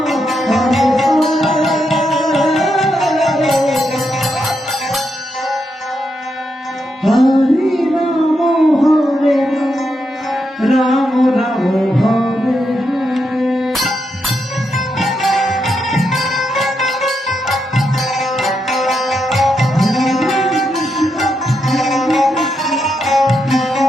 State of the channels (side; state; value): both; normal; correlation 0.82